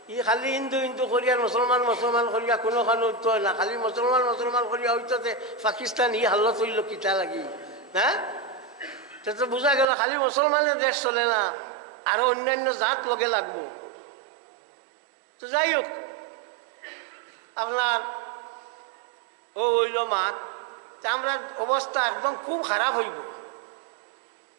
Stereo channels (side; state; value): left; drops out; at 9.9 s